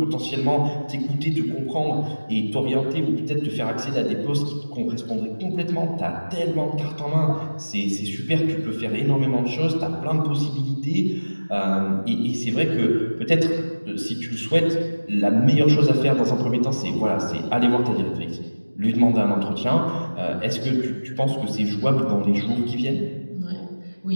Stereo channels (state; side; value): inverted; both; correlation -1.00